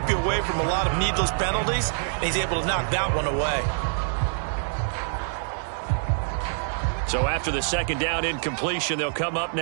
you away from a lot of needless penalties, and he's able to knock that one away. So after the second down incompletion, they'll come up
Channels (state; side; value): silent; left; digital silence